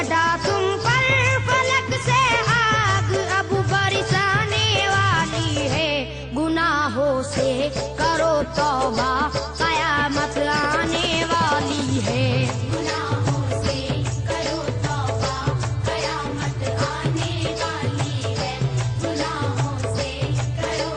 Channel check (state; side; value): identical; both; correlation 1.00